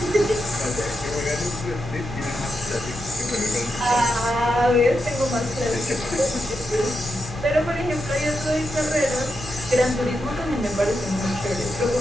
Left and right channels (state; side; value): noise; right; hum, 17 dB below the sound